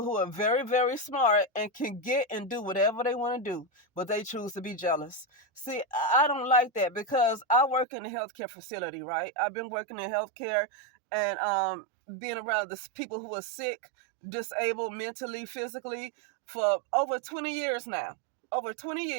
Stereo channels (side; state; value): left; drops out; at 7.9 s